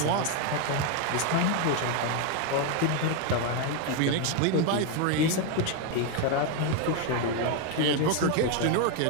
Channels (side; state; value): both; different; correlation 0.02